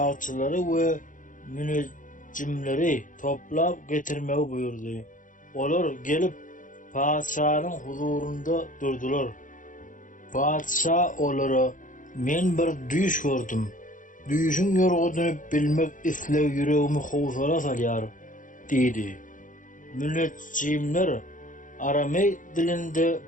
we münejjimleri toplap getirmegi buyurdy. Olar gelip padşanyň huzurunda durdular. Padşa olara, "Men bir düş gördüm. Düşüň ýorgudyny bilmek isleg yüregimi howsala salýar" diýdi. Münejjimler Aramey dilinde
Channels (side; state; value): right; late; 0.38 ms